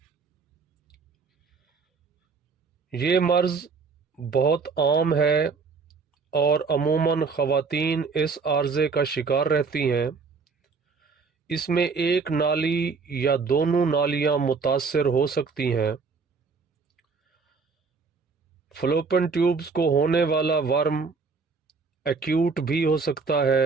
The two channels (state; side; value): quieter; left; 4.9 dB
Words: یہ مرض بہت عام ہے اور عموماً خواتین اس عارضے کا شکار رہتی ہیں۔ اس میں ایک نالی یا دونوں نالیاں متاثر ہو سکتی ہیں۔ فلوپن ٹیوبز کو ہونے والا ورم ایکیوٹ بھی ہو سکتا